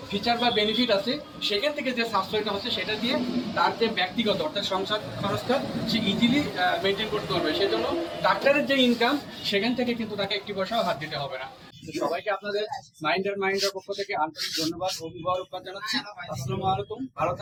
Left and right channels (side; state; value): both; identical; correlation 1.00